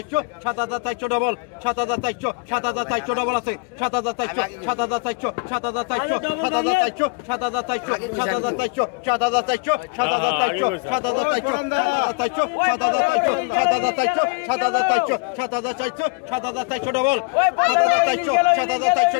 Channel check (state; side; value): quieter; right; 32.2 dB